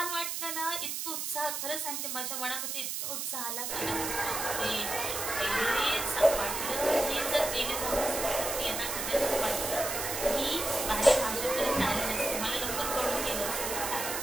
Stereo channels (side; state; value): right; noise; hiss, 3 dB below the sound